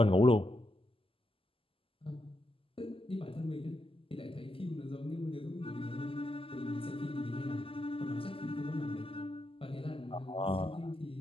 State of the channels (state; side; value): late; right; 0.26 ms